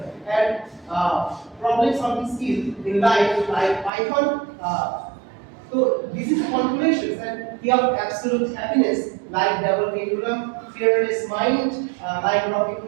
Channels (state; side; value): drops out; left; at 3.9 s